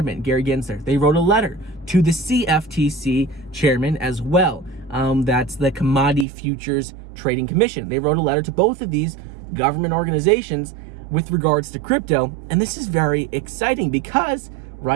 Gary Gensler. They wrote a letter to the CFTC chairman as well. That's the Commodity Futures Trading Commission. They wrote a letter to both of these government organizations with regards to crypto. And this is very exciting because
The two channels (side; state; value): left; drops out; at 6.2 s